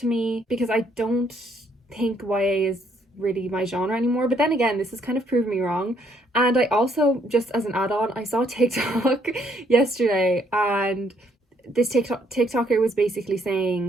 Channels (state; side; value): normal; both; correlation 0.69